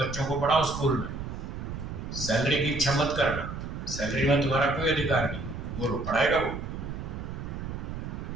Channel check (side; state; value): right; noise; rumble, 7 dB below the sound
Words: को पढ़ाओ स्कूल में, सैलरी की इच्छा मत करना, सैलरी में तुम्हारा कोई अधिकार नहीं, बोलो पढ़ाएगा वो?